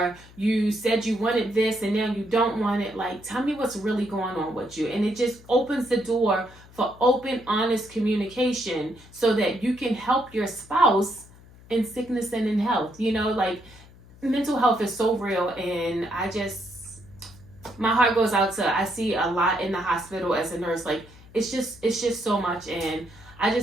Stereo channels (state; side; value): noise; left; hum, 22 dB below the sound